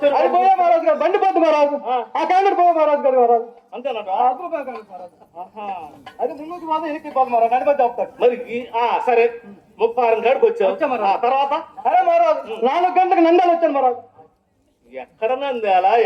అది పోయే మహారాజ్ గారు బండి పోతుంది మహారాజ్. ఆ క్యాండిడేట్ పోయే మహారాజ్ గారు మహారాజ్. అంతేనట. అది ముందుకు మాత్రం ఎనికి పోతుంది మహారాజ్. నడిపి చెప్తాడు. మరి సరే 36 కాడికి వచ్చావు. వచ్చా మహారాజ్. ఆ తర్వాత అరే మహారాజ్ 4 గంటలకు నంద్యాల వచ్చాను మహారాజ్. ఎక్కడ నంద్యాల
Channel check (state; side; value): identical; both; correlation 1.00